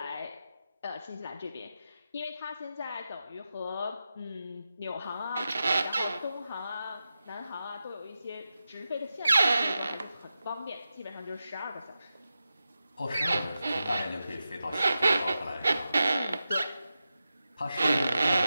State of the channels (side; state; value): both; inverted; correlation -0.91